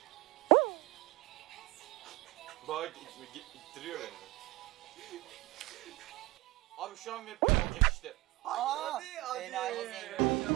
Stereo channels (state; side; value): quieter; left; 20.9 dB